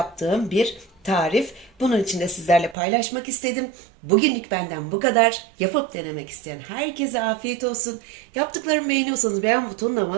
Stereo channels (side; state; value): left; drops out; at 2.8 s